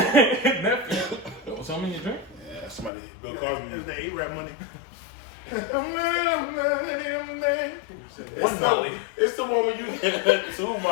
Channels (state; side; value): drops out; right; at 2.9 s